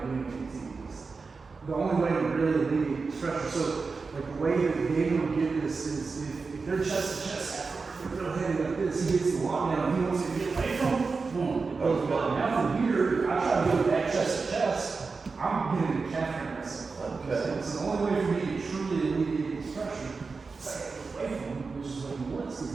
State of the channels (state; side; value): quieter; left; 4.5 dB